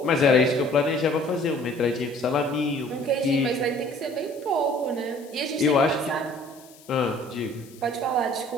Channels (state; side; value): noise; left; hiss, 24 dB below the sound